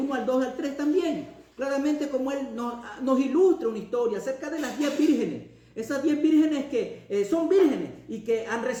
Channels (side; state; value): both; identical; correlation 1.00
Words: al 2 al 3 también. Claramente como Él nos ilustra una historia acerca de las 10 vírgenes. Esas 10 vírgenes que son vírgenes y que han